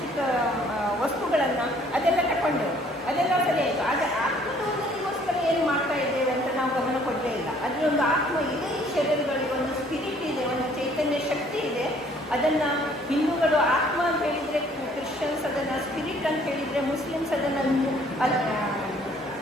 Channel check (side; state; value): both; normal; correlation 0.59